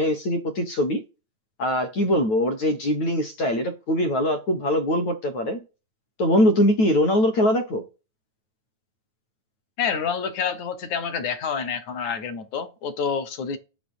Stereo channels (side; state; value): right; late; 9.1 ms